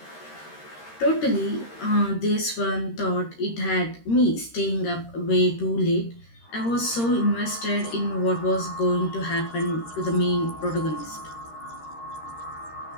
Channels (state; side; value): late; right; 13 ms